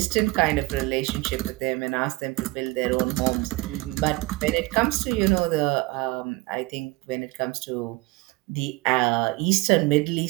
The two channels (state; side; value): quieter; left; 22.0 dB